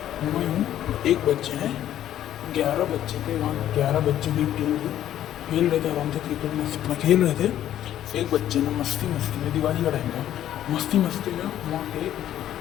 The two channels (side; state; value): right; quieter; 11.8 dB